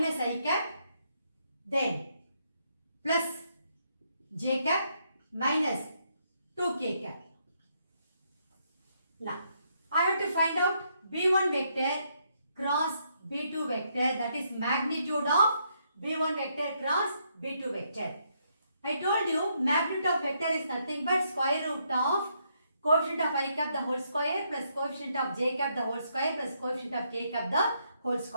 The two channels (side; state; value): both; inverted; correlation -0.75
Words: I cap, then plus j cap minus 2k cap. Now, I have to find out B1 vector cross B2 vector, that is magnitude of B1 vector cross B2 vector. I told you magnitude of vector is nothing but square root of coefficient of I cap the whole square plus coefficient of j cap the whole square plus coefficient of k cap the whole